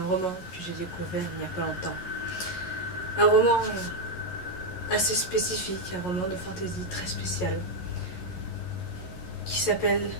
roman que j'ai découvert il n'y a pas longtemps. Un roman assez spécifique, un roman de fantaisie très spécial qui s'appelle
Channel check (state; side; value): late; right; 11 ms